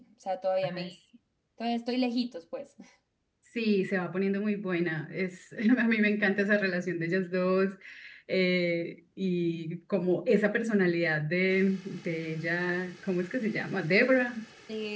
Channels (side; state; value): both; identical; correlation 1.00